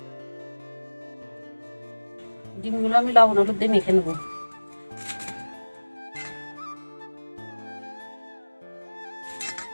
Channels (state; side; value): inverted; both; correlation -1.00